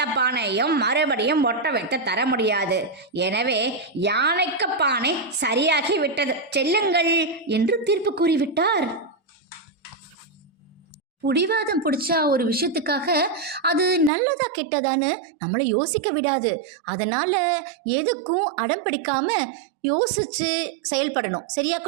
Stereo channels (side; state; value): left; drops out; at 14.1 s